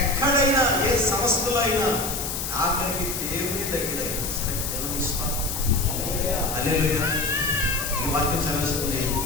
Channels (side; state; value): left; noise; hiss, 4 dB below the sound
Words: ఏ సంస్థలో అయినా ఆఖరికి దేవుని దగ్గర అయినా సరే దేవునికి స్తోత్రం. హల్లెలూయా. ఈ వాక్యం చదివేస్తుంది,